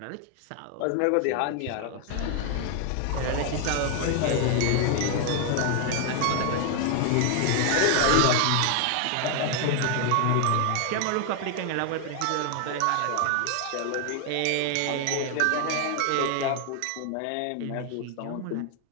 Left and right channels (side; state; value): both; different; correlation 0.00